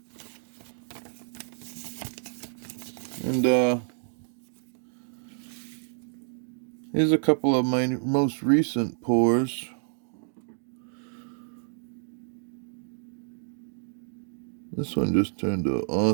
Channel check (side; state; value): left; silent; digital silence